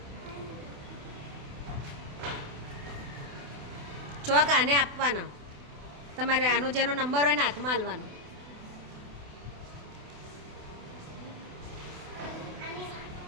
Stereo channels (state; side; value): late; left; 28 ms